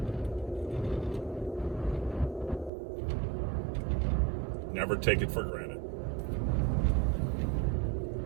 Never take it for granted.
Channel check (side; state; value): left; drops out; at 2.7 s